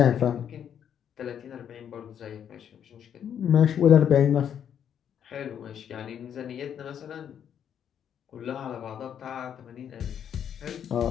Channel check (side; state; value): right; quieter; 8.9 dB